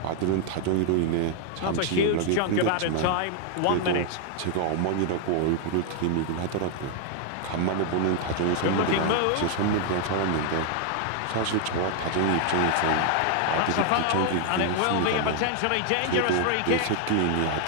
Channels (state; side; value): different; both; correlation 0.00